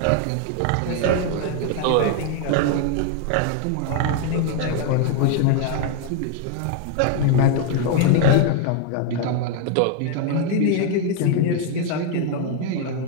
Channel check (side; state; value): both; different; correlation 0.01